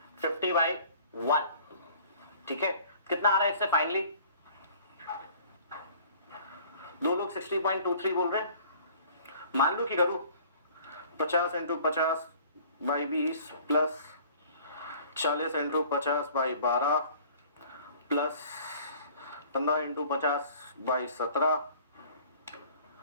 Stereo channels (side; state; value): both; inverted; correlation -0.50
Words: 50/1। ठीक है, कितना आ रहा है इससे फाइनली? दो लोग 60.23 बोल रहे हैं। मान लो कि करूं 50 into 50/20 plus 40 into 50/12 plus 15 into 50/17